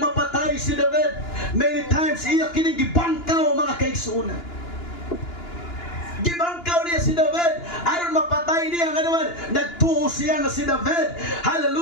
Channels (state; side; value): late; right; 2.9 ms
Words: si David. Many times iya kining gibangkaw, mga kaigsunan. Gibangkaw niya si David aron mapatay niya. Nga naman nagtuo siya nga si David,